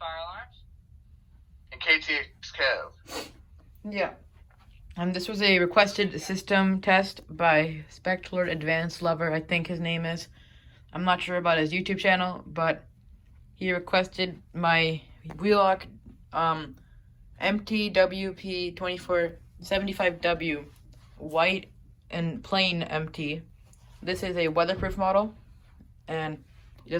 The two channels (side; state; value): both; identical; correlation 1.00